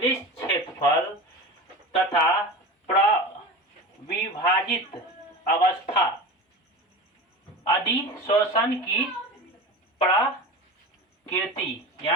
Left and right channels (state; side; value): normal; both; correlation 0.30